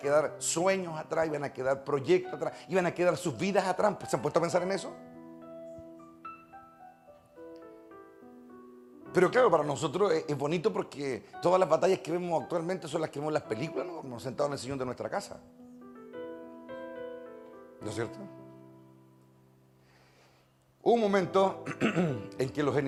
sueños atrás, iban a quedar proyectos atrás, iban a quedar sus vidas atrás. ¿Se han puesto a pensar en eso? Pero claro, para nosotros es bonito porque todas las batallas que vemos actualmente son las que vemos en las películas, ¿no? Nos sentados en el sillón de nuestra casa. ¿No es cierto? Hubo un momento en que los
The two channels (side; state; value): both; identical; correlation 1.00